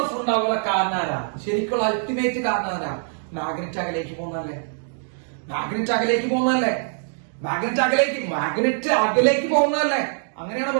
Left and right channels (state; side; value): silent; left; digital silence